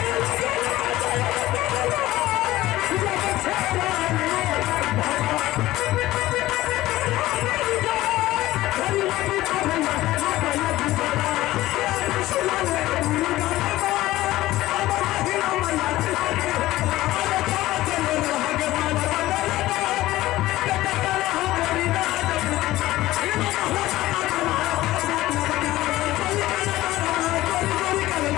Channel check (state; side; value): quieter; right; 16.5 dB